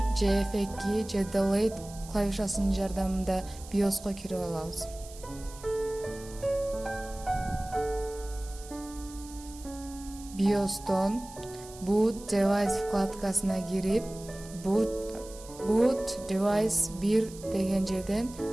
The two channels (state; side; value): noise; right; hiss, 18 dB below the sound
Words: же F2 же Delete клавишасынын жардамында BIOSко кирип алабыз. BIOS'тон Boot Device вкладкасына кирип, Boot Device 1 деген жерден